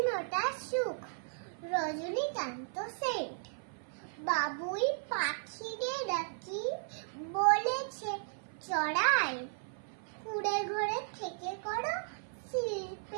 ফোঁটা সুখ, রজনীকান্ত সেন্ট। বাবুই পাখিরে ডাকি, বলেছে চড়াই, কুঁড়ে ঘরে থেকে করো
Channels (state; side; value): silent; left; 54 dB below the other